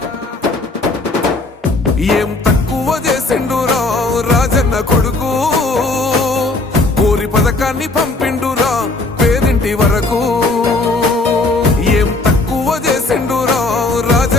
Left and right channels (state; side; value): quieter; right; 3.2 dB